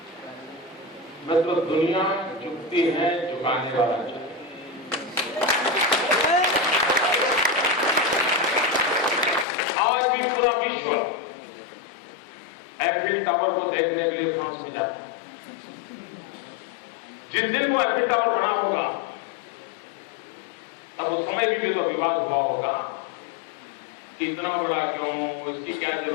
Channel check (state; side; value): drops out; right; at 9.5 s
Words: मतलब दुनिया झुकती है, झुकाने वाला चाहिए। आज भी पूरा विश्व एफिल टावर को देखने के लिए फ्रांस में जाता है। जिस दिन वो एफिल टावर बना होगा तब उस समय भी तो विवाद हुआ होगा कि इतना बड़ा क्यों, इसकी क्या